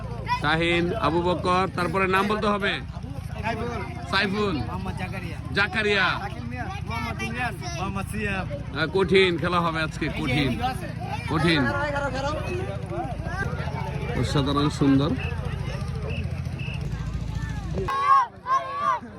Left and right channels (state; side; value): identical; both; correlation 1.00